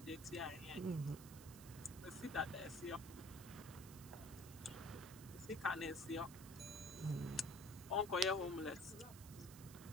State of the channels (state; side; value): noise; right; hiss, 14 dB below the sound